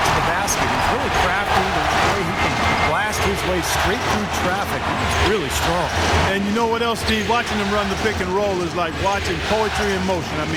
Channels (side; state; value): both; identical; correlation 1.00